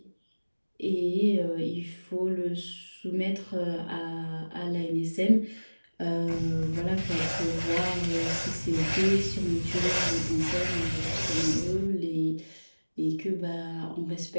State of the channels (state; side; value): inverted; both; correlation -1.00